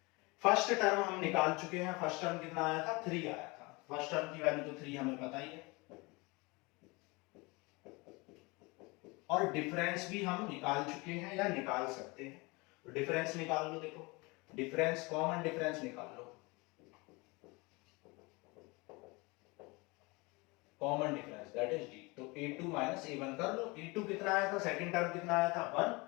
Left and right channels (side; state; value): right; quieter; 25.9 dB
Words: First term हम निकाल चुके हैं, फर्स्ट टर्म कितना आया था 3 आया था, फर्स्ट टर्म की वैल्यू तो 3 हमें पता ही है। और डिफरेंस भी हम निकाल चुके हैं या निकाल सकते हैं, तो डिफरेंस निकाल लो। देखो डिफरेंस, कॉमन डिफरेंस निकाल लो, common difference that is d. तो a2 माइनस a1 कर लो, a2 कितना आया था, सेकंड टर्म कितना आया था